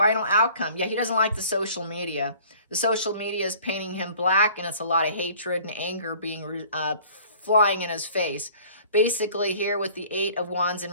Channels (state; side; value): inverted; both; correlation -0.51